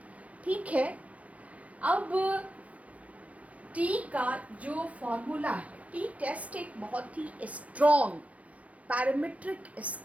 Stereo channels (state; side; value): late; left; 0.066 ms